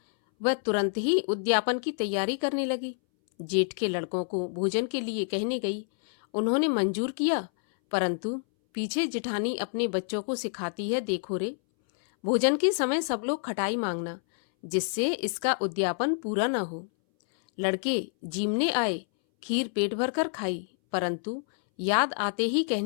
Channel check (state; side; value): silent; right; 59 dB below the other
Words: वह तुरंत ही उद्यापन की तैयारी करने लगी। जेठ के लड़कों को भोजन के लिए कहने गई। उन्होंने मंजूर किया, परंतु पीछे जिठानी अपने बच्चों को सिखाती है, देखो रे, भोजन के समय सब लोग खटाई मांगना, जिससे इसका उद्यापन पूरा न हो। लड़के जीमने आए, खीर पेट भर कर खाई, परंतु याद आते ही